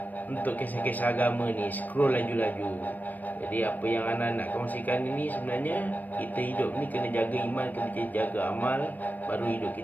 untuk kisah-kisah agama ni, scroll laju-laju. Jadi apa yang Ana nak kongsikan ini sebenarnya, kita hidup ni kena jaga iman, kena jaga amal, baru hidup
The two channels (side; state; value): right; late; 0.082 ms